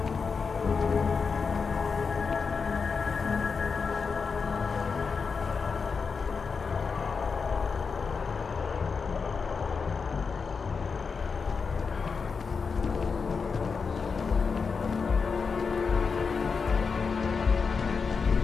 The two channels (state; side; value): quieter; right; 5.3 dB